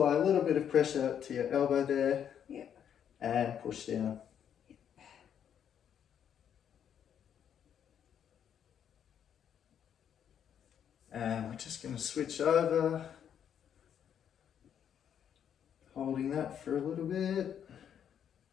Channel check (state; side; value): quieter; right; 8.9 dB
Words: a little bit of pressure to your elbow there. Yep. And push down. And we're just going to switch over, holding that for a little bit.